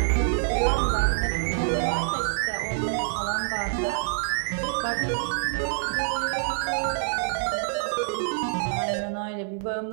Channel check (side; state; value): left; silent; 61 dB below the other